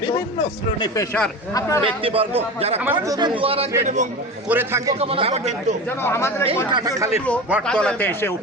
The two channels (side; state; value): both; normal; correlation 0.29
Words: বিভিন্ন শ্রেণী পেশার ব্যক্তিবর্গ যারা করে থাকে তারা কিন্তু এই কাটাখালীর বটতলাতে এসে